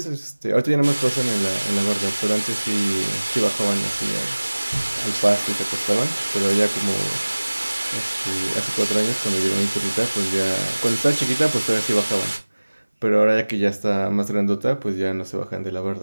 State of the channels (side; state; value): both; inverted; correlation -1.00